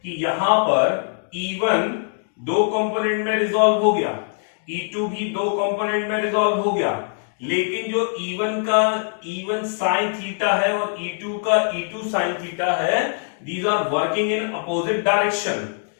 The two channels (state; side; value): silent; right; digital silence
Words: कि यहां पर E1 दो कंपोनेंट में रिजॉल्व हो गया, E2 भी दो कंपोनेंट में रिजॉल्व हो गया, लेकिन जो E1 का E1 sin थीटा है और E2 का E2 sin थीटा है, these are working in opposite direction.